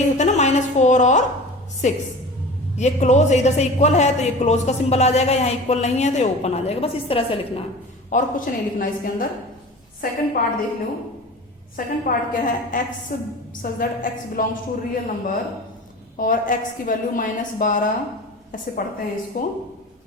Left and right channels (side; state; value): both; normal; correlation 0.36